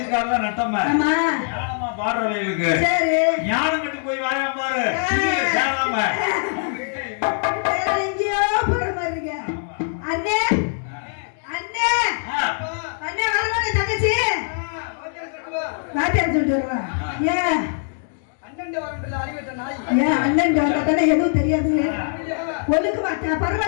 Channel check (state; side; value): silent; right; 64 dB below the other